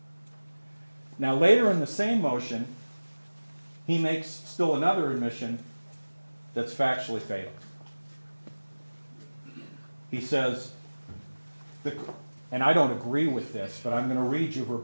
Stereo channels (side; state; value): both; inverted; correlation -1.00